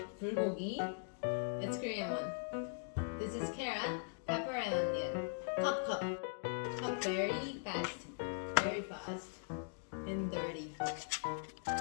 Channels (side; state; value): right; silent; digital silence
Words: bulgogi. It's Korean one. This is carrot, pepper, and onion. Cut very fast, and dirty.